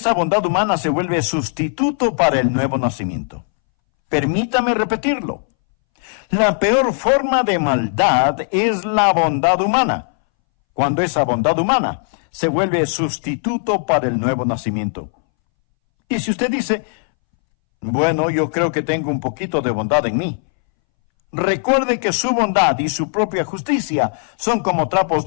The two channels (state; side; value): silent; right; 65 dB below the other